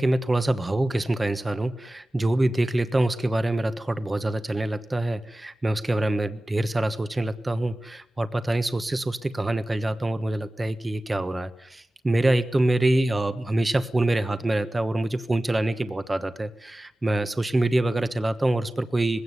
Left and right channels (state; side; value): normal; both; correlation 0.96